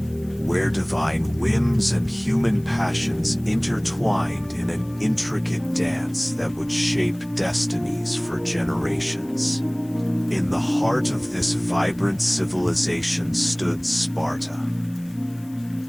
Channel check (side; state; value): left; noise; hiss, 25 dB below the sound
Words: where divine whims and human passions intertwined in an intricate dance that would shape destinies for generations. In the heart of this vibrant civilization stood Sparta,